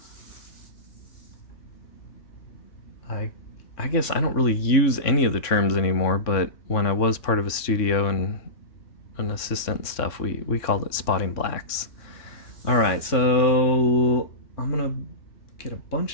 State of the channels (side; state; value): right; late; 3.6 ms